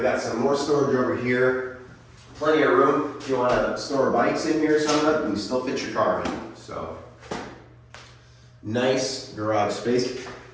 got some more storage over here. Plenty of room. If you want to store bikes in here or something, you can still fit your car in. So, nice garage space.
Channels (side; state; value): both; identical; correlation 1.00